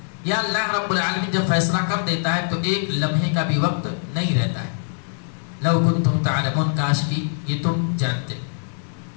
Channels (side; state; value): right; silent; 64 dB below the other